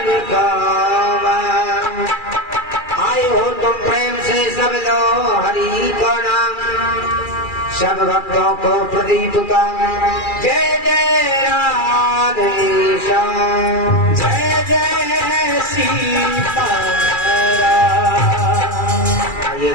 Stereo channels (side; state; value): right; late; 2.3 ms